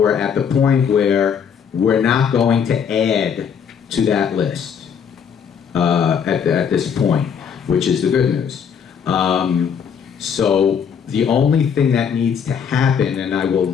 at the point where we're not going to add to that list at this point, which is the good news. So the only thing that needs to happen, and I will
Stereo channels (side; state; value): right; quieter; 7.3 dB